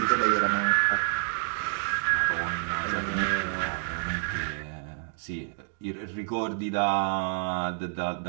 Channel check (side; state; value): left; silent; digital silence